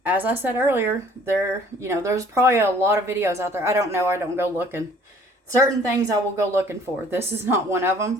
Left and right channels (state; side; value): normal; both; correlation 0.55